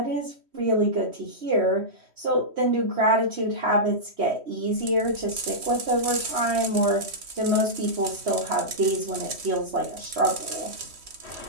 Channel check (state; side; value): late; left; 3.1 ms